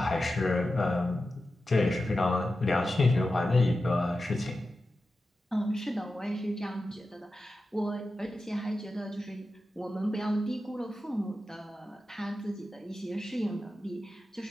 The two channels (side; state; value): both; normal; correlation 0.92